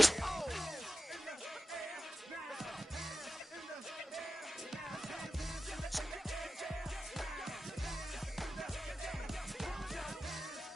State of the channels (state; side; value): normal; both; correlation 0.93